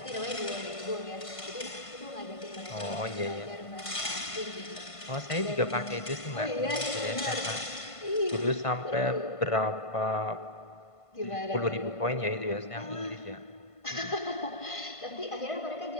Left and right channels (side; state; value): right; late; 1.5 ms